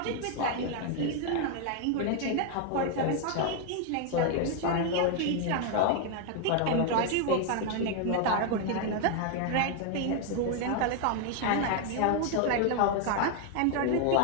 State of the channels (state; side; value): different; both; correlation 0.01